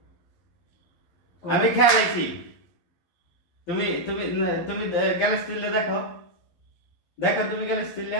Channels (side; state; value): right; late; 11 ms